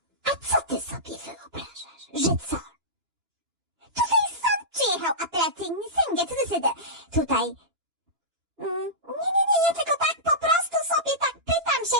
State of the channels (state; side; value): late; left; 2.9 ms